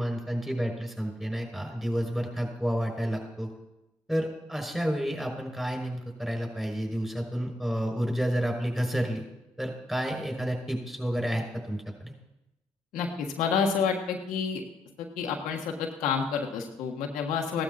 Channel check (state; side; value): normal; both; correlation 0.79